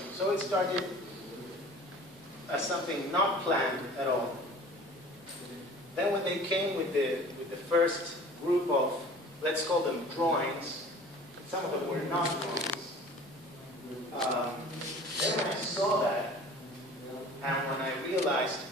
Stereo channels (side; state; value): both; normal; correlation 0.44